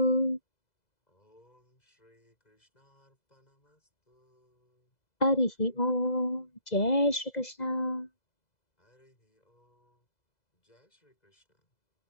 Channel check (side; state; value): right; late; 2.0 ms